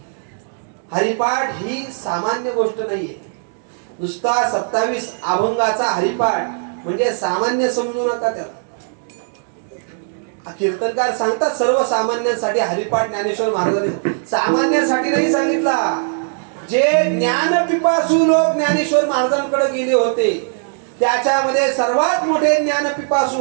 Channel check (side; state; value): left; silent; digital silence